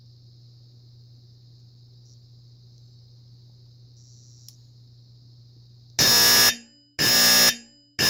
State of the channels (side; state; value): both; identical; correlation 1.00